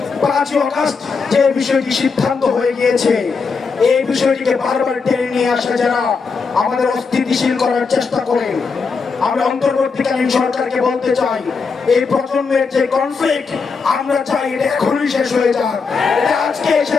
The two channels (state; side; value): quieter; right; 5.0 dB